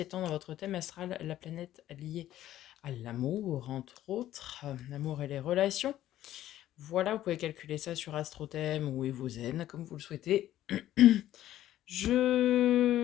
dans votre thème astral la planète liée à l'amour, entre autres, l'amour et les relations. Voilà, vous pouvez calculer ça sur AstroThème ou Evozen, comme vous le souhaitez.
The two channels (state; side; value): quieter; right; 13.2 dB